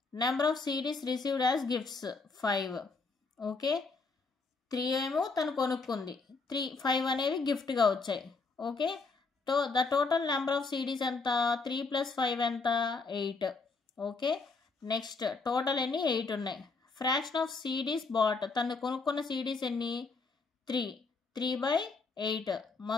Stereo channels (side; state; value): right; quieter; 4.2 dB